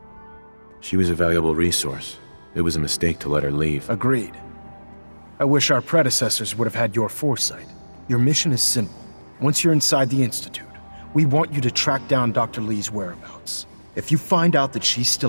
She was a valuable resource. It was a mistake to let her leave. Agreed. I wish our predecessors would have had your foresight. Your mission is simple. Once you're inside the Institute, we want you to track down Dr. Lee's whereabouts. If you find out that she's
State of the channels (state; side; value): inverted; both; correlation -1.00